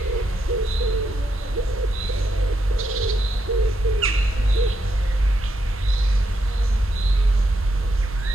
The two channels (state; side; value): normal; both; correlation 0.81